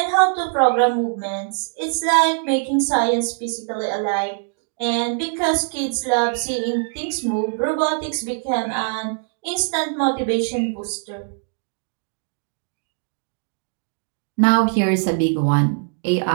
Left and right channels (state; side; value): silent; left; 64 dB below the other